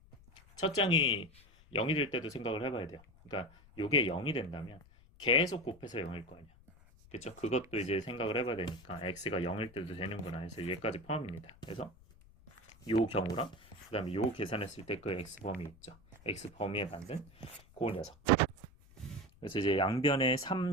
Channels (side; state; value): left; noise; rumble, 25 dB below the sound